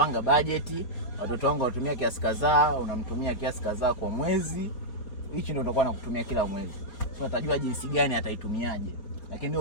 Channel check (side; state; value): right; late; 4.5 ms